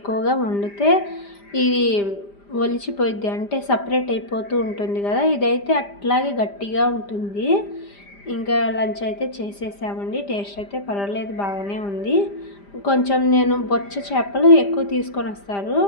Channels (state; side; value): late; right; 5.0 ms